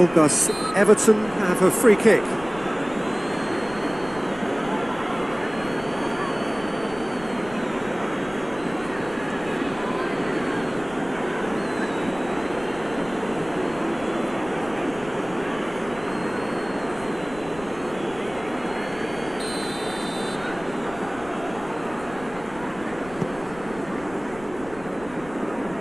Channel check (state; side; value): noise; left; rumble, 18 dB below the sound